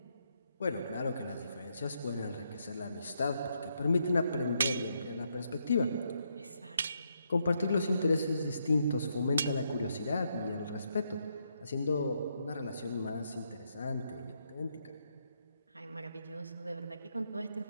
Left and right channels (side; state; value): both; inverted; correlation -0.77